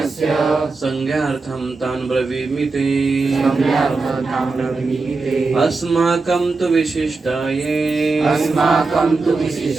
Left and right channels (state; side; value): quieter; left; 3.9 dB